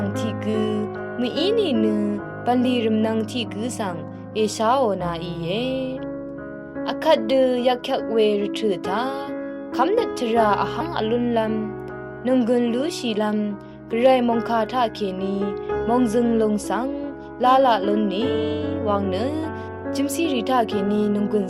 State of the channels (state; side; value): identical; both; correlation 1.00